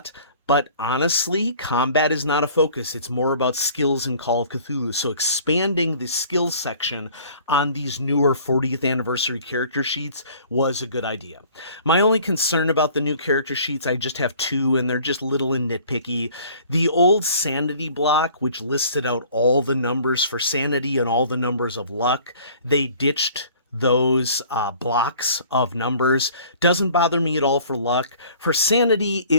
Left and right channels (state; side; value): inverted; both; correlation -0.51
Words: But honestly, combat is not a focus. It's more about skills in Call of Cthulhu. So expanding the skills section on these newer 40th anniversary character sheets was a good idea. My only concern about the new character sheets, I just have two, and they're just little and nitpicky. The old sanity block, which listed out all the numbers for sanity and all the numbers of luck, they ditched those blocks of numbers. Doesn't bother me at all for luck. For sanity,